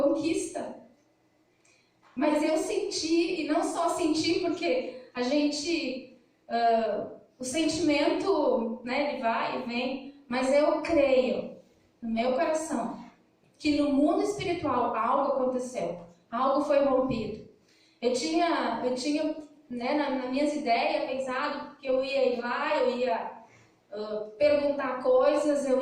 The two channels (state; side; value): identical; both; correlation 1.00